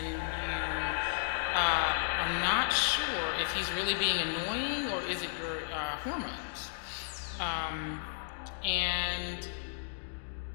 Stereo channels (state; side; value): silent; right; digital silence